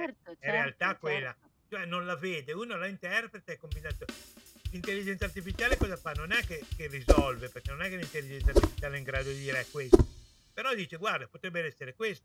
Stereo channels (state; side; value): identical; both; correlation 1.00